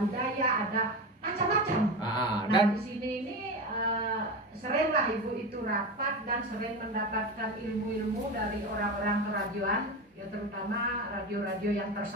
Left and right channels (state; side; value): normal; both; correlation 0.22